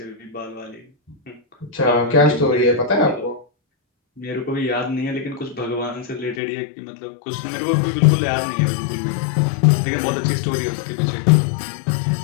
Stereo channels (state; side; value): drops out; right; at 6.4 s